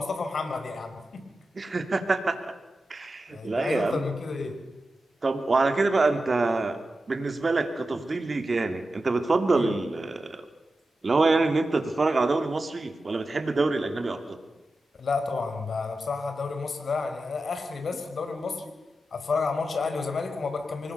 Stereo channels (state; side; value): normal; both; correlation 0.92